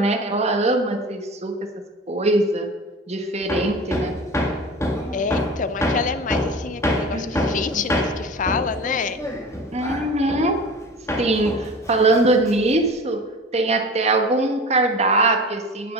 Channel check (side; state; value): both; normal; correlation 0.35